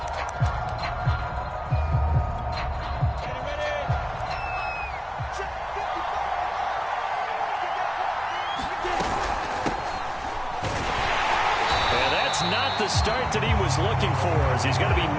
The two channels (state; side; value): identical; both; correlation 1.00